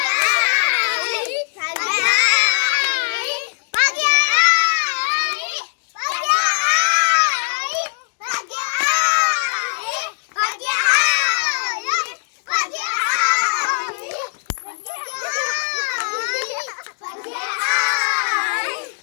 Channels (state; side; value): silent; right; digital silence